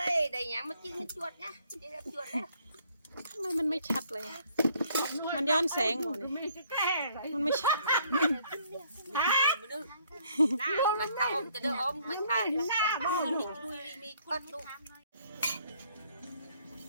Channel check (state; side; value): inverted; both; correlation -0.64